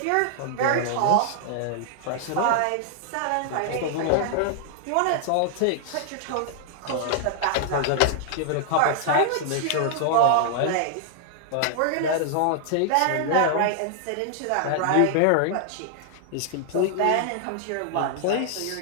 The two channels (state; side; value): different; both; correlation -0.01